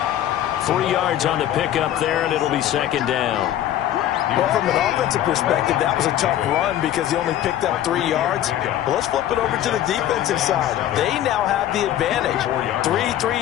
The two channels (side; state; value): right; quieter; 12.1 dB